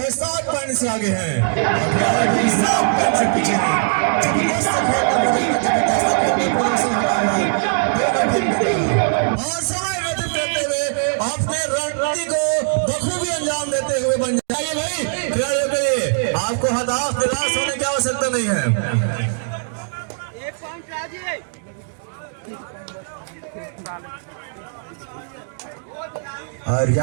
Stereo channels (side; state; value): left; silent; digital silence